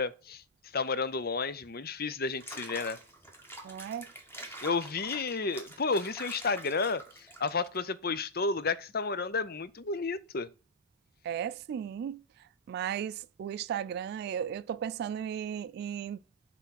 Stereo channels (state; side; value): normal; both; correlation -0.10